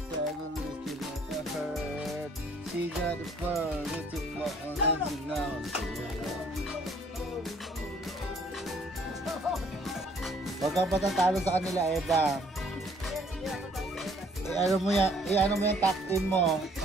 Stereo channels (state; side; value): normal; both; correlation 0.60